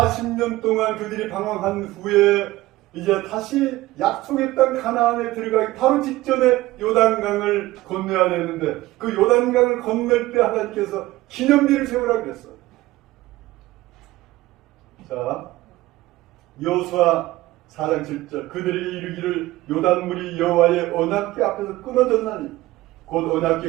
동안 그들이 방황한 후에 이제 다시 약속의 땅 가나안에 들어가기 바로 직전에 요단강을 건너야 되는데 그 요단강을 건널 때 하나님께서 기념비를 세우라고 그랬어요. 자, 여호수아 4장 7절 그들이 이르기를 요단물이 여호와의 언약궤 앞에서 끊어졌나니 곧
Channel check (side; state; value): left; quieter; 17.8 dB